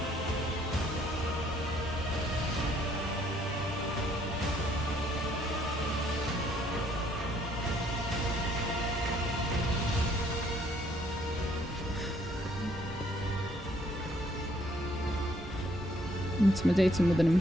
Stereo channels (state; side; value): normal; both; correlation 0.65